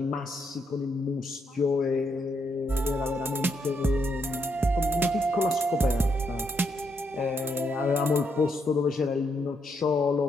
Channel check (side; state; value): both; normal; correlation 0.78